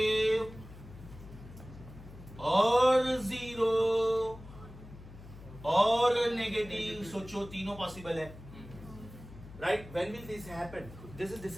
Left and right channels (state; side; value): noise; left; hum, 17 dB below the sound